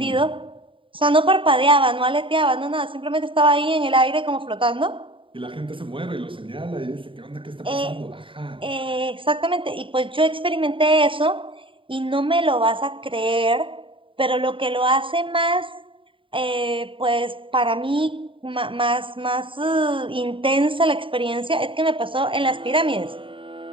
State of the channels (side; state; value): left; late; 0.25 ms